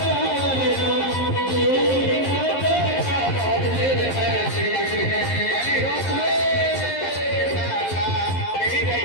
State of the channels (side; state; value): right; late; 11 ms